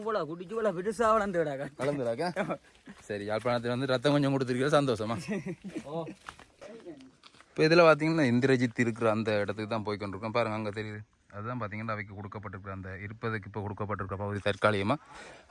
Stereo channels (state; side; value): identical; both; correlation 1.00